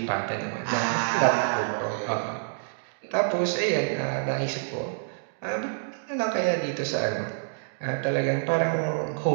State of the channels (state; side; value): silent; left; digital silence